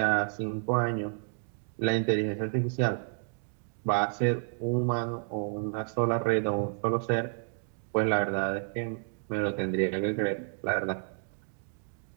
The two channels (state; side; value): silent; left; 57 dB below the other